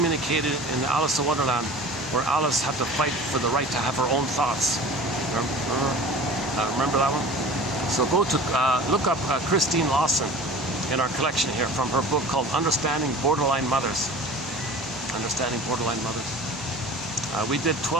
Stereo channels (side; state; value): both; normal; correlation 0.40